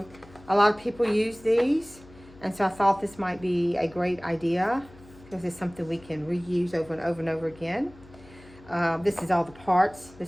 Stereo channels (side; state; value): left; noise; hum, 22 dB below the sound